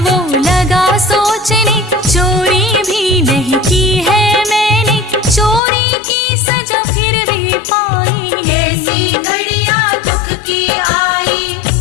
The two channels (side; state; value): right; drops out; at 5.6 s